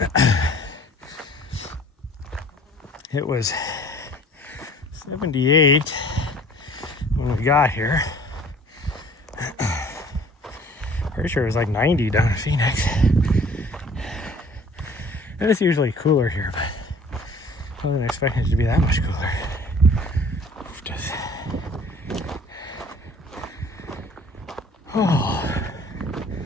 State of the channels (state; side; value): normal; both; correlation 0.51